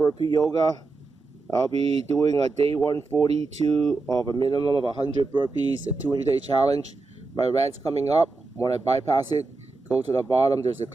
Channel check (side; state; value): left; quieter; 3.6 dB